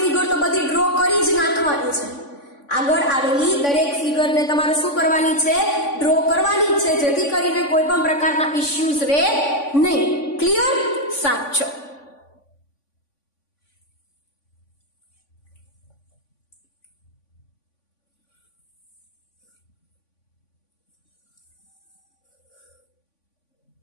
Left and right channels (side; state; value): right; late; 3.5 ms